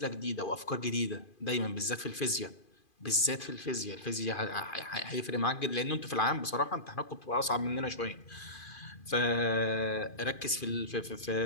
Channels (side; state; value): right; late; 2.4 ms